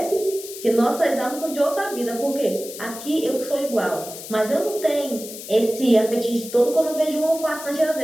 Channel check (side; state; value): left; noise; hiss, 12 dB below the sound